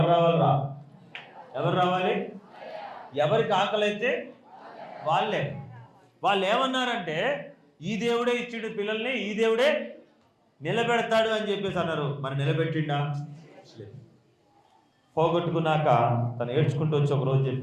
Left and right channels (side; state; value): both; identical; correlation 1.00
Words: రావాలి? ఎవరు రావాలి? ఎవరికి ఆకలైతే వాళ్ళే. వాళ్ళు ఏమన్నారంటే, ఈ దేవుడే ఇచ్చిండు పిల్లల్ని, ఈ దేవుడే నిలబెడతాడు అని చెప్పేసి అన్నారు. మరి నిలబెట్టిండా? పోగొట్టుకున్నాక తను ఏడ్చుకుంటూ వచ్చి ఒకరోజు